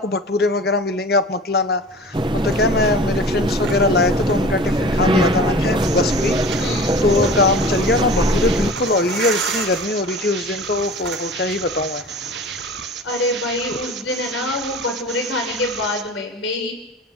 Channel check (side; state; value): both; normal; correlation 0.38